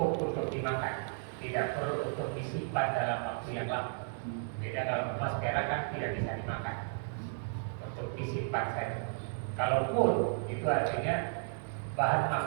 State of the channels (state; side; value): silent; left; digital silence